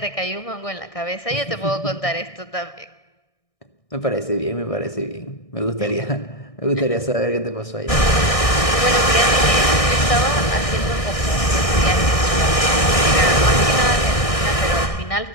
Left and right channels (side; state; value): right; late; 1.6 ms